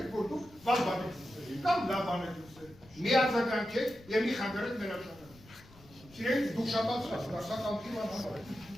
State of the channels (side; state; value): left; noise; rumble, 23 dB below the sound